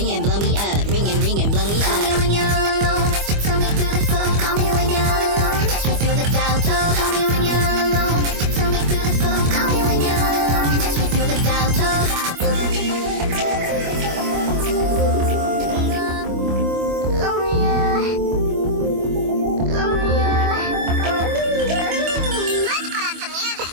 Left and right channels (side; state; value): left; late; 25 ms